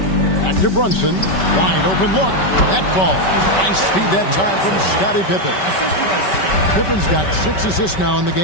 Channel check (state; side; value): late; right; 5.2 ms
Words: Back to Brunson. Wide open look. That falls. Nice feed that time from Scottie Pippen. Pippen's got 6 assists now in the